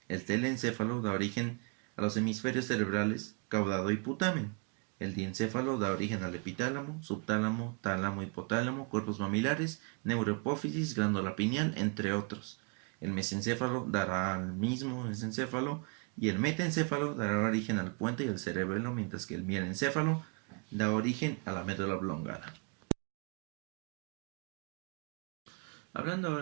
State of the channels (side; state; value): left; quieter; 35.2 dB